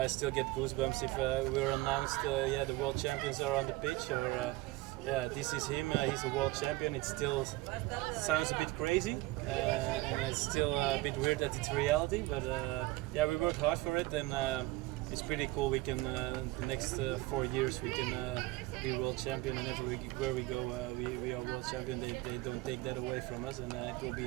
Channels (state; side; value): quieter; left; 19.6 dB